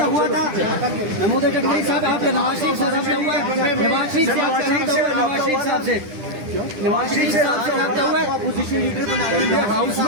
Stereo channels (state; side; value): late; left; 9.9 ms